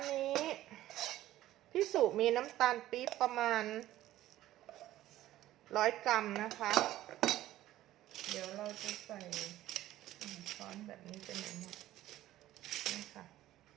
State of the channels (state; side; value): quieter; left; 14.5 dB